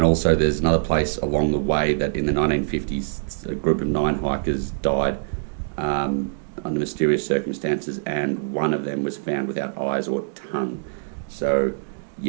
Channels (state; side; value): silent; left; digital silence